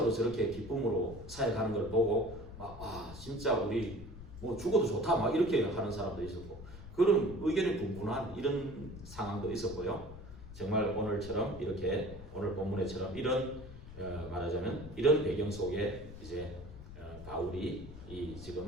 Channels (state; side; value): noise; left; rumble, 14 dB below the sound